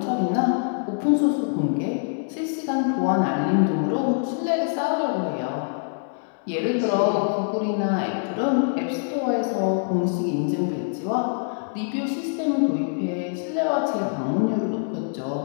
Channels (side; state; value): right; silent; digital silence